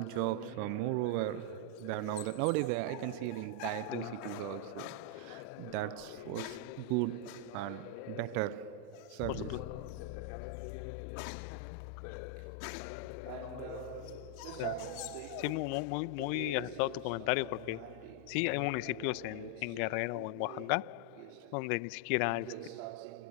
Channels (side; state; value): both; different; correlation 0.00